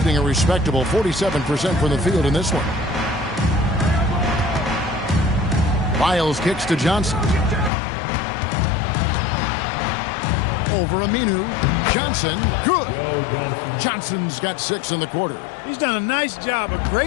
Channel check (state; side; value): drops out; right; at 7.7 s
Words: a respectable 47% from the field in this one. Lyles kicks to Johnson. Over Aminu. Johnson, good. Johnson's got 6 in the quarter. He's done a nice job, a